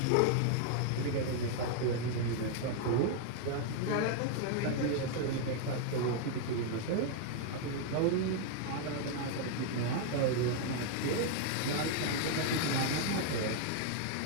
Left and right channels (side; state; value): both; different; correlation 0.00